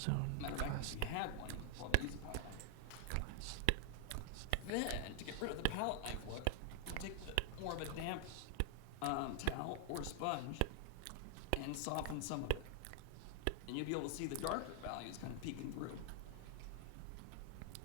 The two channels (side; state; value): both; different; correlation 0.00